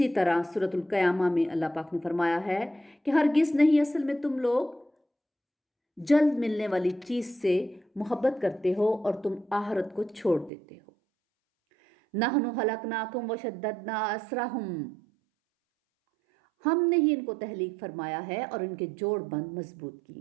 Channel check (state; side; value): drops out; left; at 10.5 s